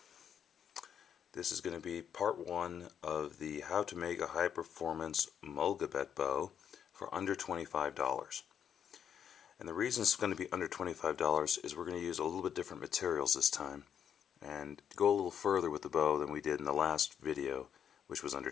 This is going to be part one of the how to make a high performance Mollegabet bow for under $25. And the reason it's going to be under $25 is we're going to use a little bit different materials this time and go a little further with the bow than we did in the last video, which was under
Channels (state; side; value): quieter; right; 8.5 dB